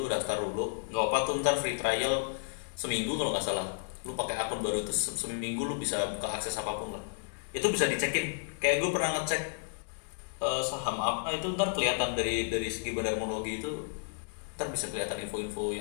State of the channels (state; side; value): silent; right; digital silence